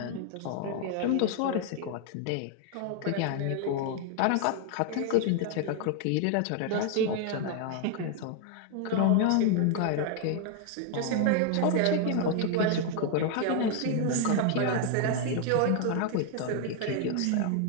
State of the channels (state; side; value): different; both; correlation 0.00